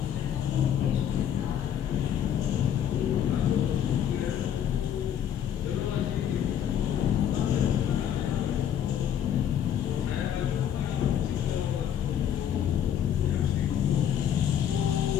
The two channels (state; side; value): quieter; right; 9.6 dB